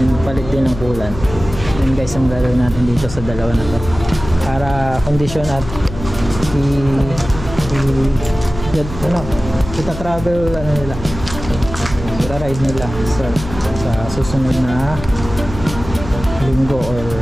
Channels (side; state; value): left; noise; hum, 11 dB below the sound